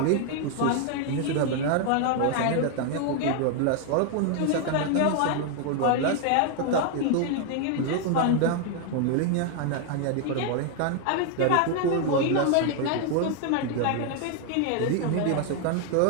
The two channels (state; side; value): different; both; correlation 0.00